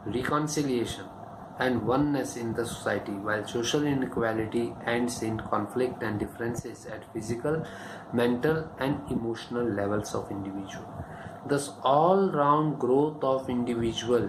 reconciliation, and oneness in the society, while social inequality ends in conflict and differences at physical, mental, and emotional levels of individual. Thus, all-round growth of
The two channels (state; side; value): identical; both; correlation 1.00